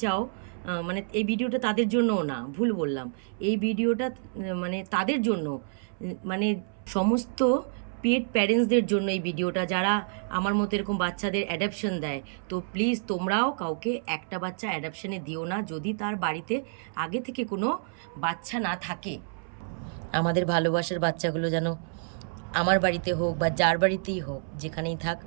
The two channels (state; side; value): silent; left; 59 dB below the other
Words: চাও, মানে এই ভিডিওটা তাদের জন্যও না, ভুল বললাম। এই ভিডিওটা মানে তাদের জন্য, মানে সমস্ত পেট প্যারেন্টসদের জন্য এই ভিডিওটা, যারা আমার মতো এরকম বাচ্চাদের অ্যাডাপশন দেয়। তো প্লিজ তোমরাও কাউকে একটা বাচ্চা অ্যাডাপশনে দিও না যদি তার বাড়িতে আগে থেকে কোনো বাচ্চা না থাকে। আমাদের ভালোবাসার বাচ্চাগুলো যেন আমার বাড়িতে হোক বা যার বাড়িতেই হোক, যেখানেই থাক,